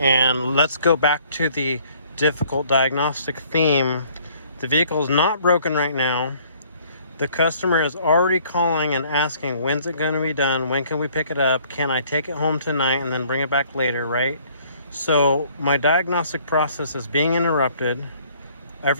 let's go back to the difficult diagnostic theme. The vehicle is not broken right now. The customer is already calling and asking, when's it going to be done? When can we pick it up? Can I take it home tonight and then bring it back later, right? So my diagnostic process is being interrupted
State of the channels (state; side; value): inverted; both; correlation -0.59